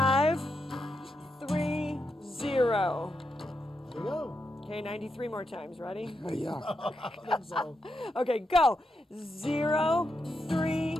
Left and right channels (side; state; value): both; normal; correlation 0.84